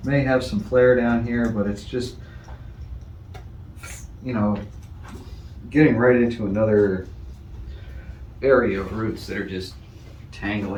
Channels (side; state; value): both; identical; correlation 1.00